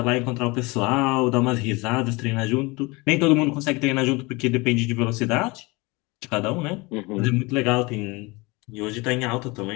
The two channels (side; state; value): right; quieter; 24.9 dB